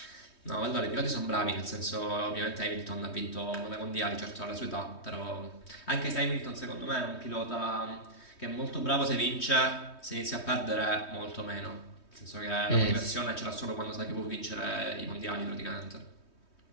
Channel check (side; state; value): right; late; 3.2 ms